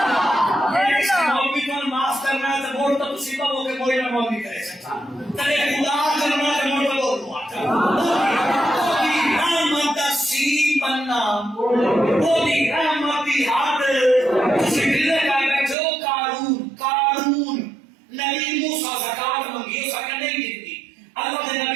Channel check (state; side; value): drops out; left; at 15.8 s